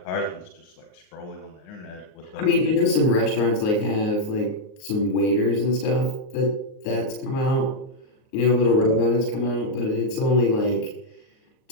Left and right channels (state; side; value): late; right; 37 ms